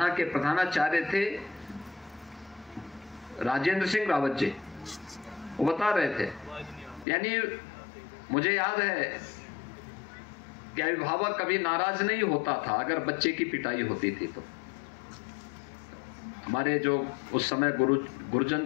के प्रधानाचार्य थे राजेंद्र सिंह रावत जी, वो बता रहे थे, यानी मुझे याद है कि अभिभावक कभी नाराज नहीं होता था अगर बच्चे की पिटाई होती थी। तो हमारे जो उस समय गुरुजन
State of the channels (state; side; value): drops out; right; at 7.1 s